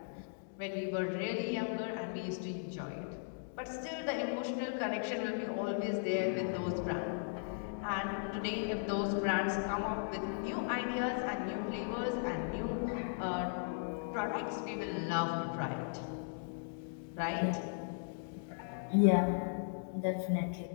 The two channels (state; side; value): silent; right; digital silence